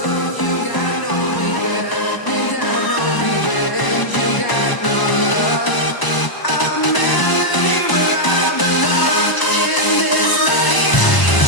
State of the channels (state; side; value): late; right; 1.0 ms